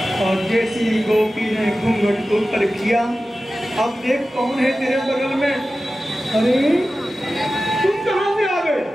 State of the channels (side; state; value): both; normal; correlation 0.95